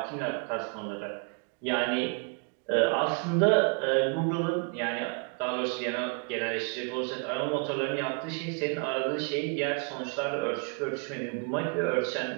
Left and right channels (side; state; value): left; quieter; 37.2 dB